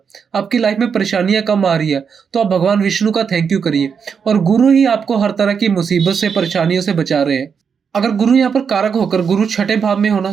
आपकी लाइफ में परेशानियां कम आ रही है तो आप भगवान विष्णु का थैंक यू करिए, और गुरु ही आपको हर तरह की मुसीबत से, परेशानियों से बचा रहे हैं। अगर गुरु यहाँ पर कारक होकर गुरु छठे भाव में होना,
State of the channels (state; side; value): quieter; left; 6.5 dB